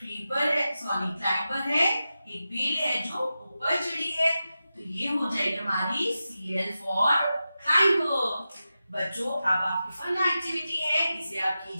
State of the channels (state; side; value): inverted; both; correlation -0.92